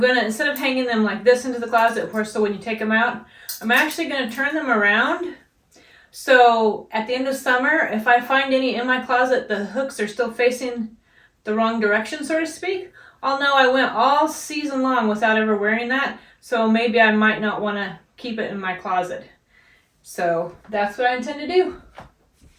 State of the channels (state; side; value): identical; both; correlation 1.00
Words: to, instead of hanging them like this into the closet, so when you take them out, I'm actually going to turn them around. So at the end of summer, if I find any in my closet, the hooks are still facing the wrong direction, so to speak, I'll know I went all season long without ever wearing that. So maybe I might not want to keep it in my closet. So that's what I intend to do.